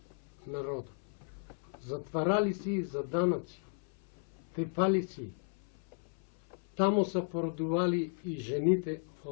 народа. Затварали си за данъци, тепали си. Тамо са породували и жените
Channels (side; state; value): right; silent; 54 dB below the other